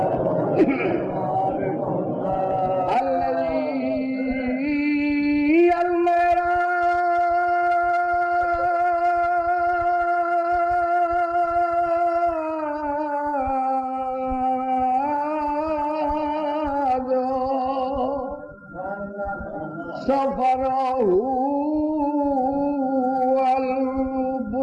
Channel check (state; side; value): identical; both; correlation 1.00